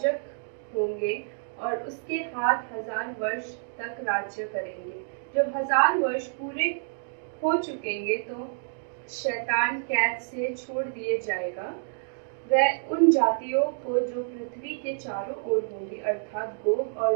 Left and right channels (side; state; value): left; silent; digital silence